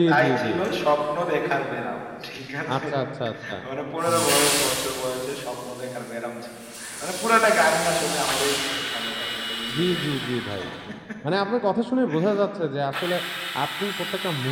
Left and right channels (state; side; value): identical; both; correlation 1.00